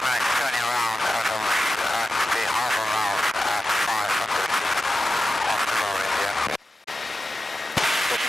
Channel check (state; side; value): normal; both; correlation 0.93